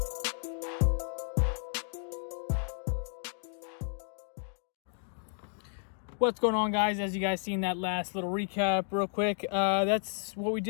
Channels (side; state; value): right; silent; digital silence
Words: What's going on, guys? As you guys seen that last little recap real quick, that's what we